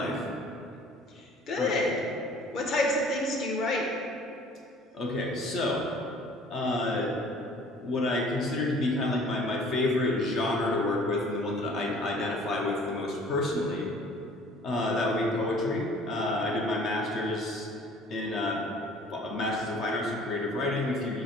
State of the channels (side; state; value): both; normal; correlation 0.51